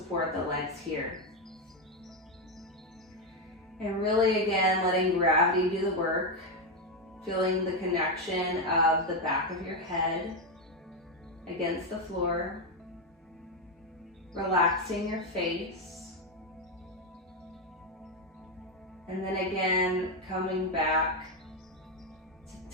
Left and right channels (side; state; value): both; normal; correlation 0.07